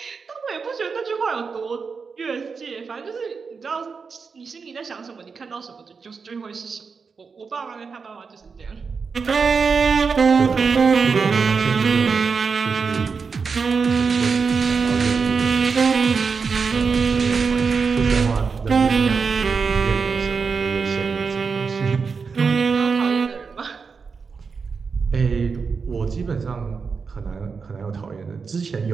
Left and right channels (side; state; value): left; quieter; 5.3 dB